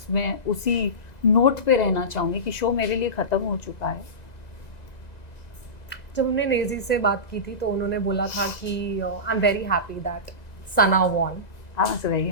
मैं उसी नोट पे रहना चाहूँगी कि शो मेरे लिए ख़त्म हो चुका है। जब हमने नेजी से बात की थी तो उन्होंने बोला था कि I am very happy that Sana won. I was very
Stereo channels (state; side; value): late; right; 2.0 ms